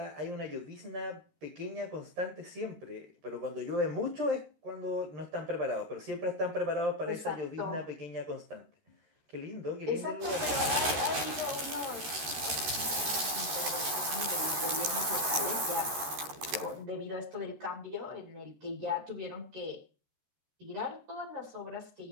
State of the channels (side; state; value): left; late; 13 ms